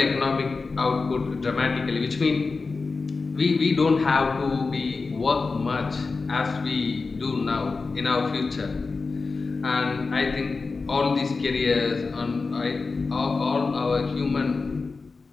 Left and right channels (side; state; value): right; quieter; 4.2 dB